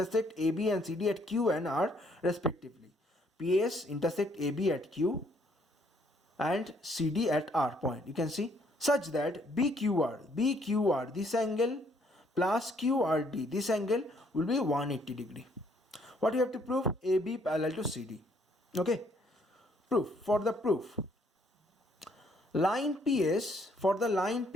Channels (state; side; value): normal; both; correlation 0.67